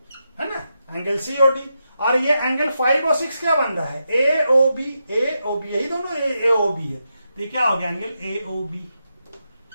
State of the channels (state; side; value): inverted; both; correlation -0.86